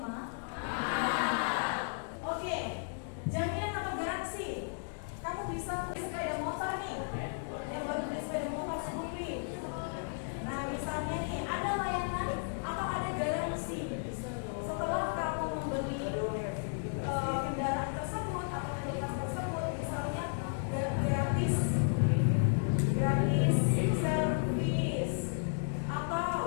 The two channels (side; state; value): right; silent; digital silence